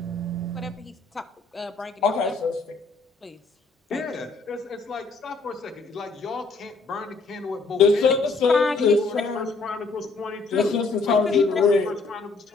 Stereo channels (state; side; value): quieter; right; 3.9 dB